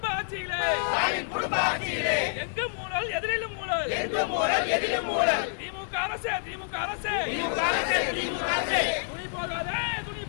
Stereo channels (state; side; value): silent; right; 59 dB below the other